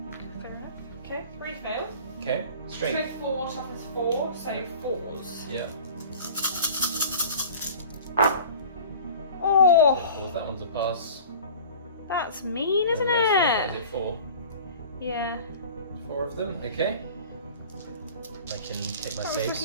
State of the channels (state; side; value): inverted; both; correlation -0.42